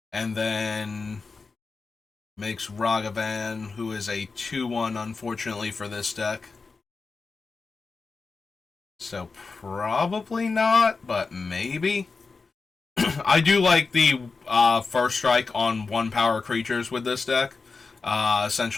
and then makes Ragavan, who is a 2/1, unfortunately, for this deck. So probably not, but maybe. I do like the First Strike on 1 power creatures with this deck,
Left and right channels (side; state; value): right; quieter; 4.4 dB